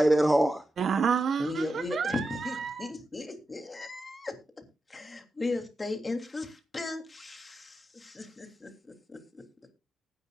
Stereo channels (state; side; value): normal; both; correlation 0.89